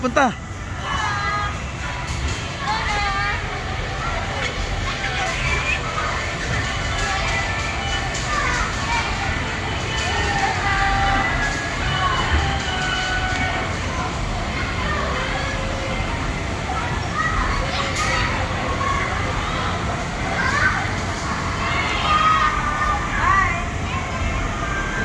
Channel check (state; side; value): identical; both; correlation 1.00